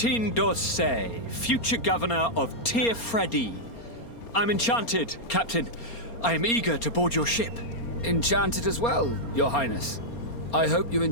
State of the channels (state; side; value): late; right; 4.3 ms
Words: d'Orsay, future governor of Freddy. I'm enchanted, Captain. I am eager to board your ship. Enchanted as well, Your Highness. I hope you